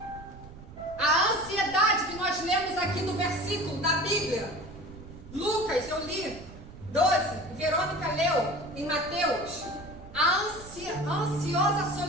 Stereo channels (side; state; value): right; noise; rumble, 16 dB below the sound